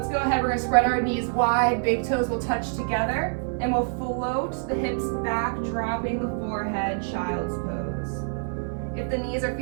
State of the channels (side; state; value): left; silent; digital silence